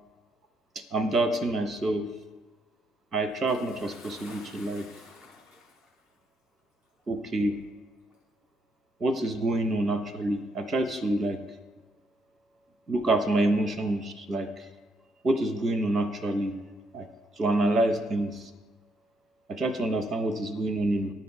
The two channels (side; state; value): both; normal; correlation 0.75